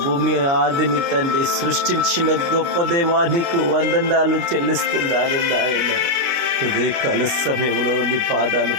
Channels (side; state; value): left; late; 29 ms